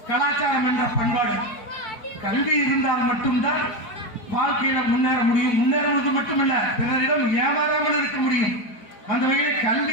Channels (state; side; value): late; right; 4.9 ms